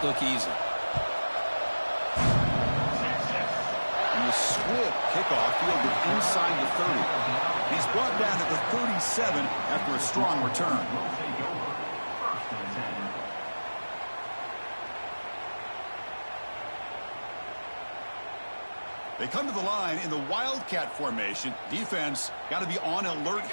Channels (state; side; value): inverted; both; correlation -1.00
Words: look easy. And the swift kickoff fielded inside the 30. He's brought down at the 37 after a strong return. They come to the line in the Wildcat formation. Defense got to be on alert